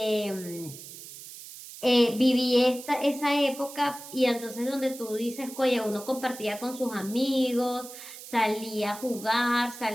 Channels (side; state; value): right; noise; hiss, 14 dB below the sound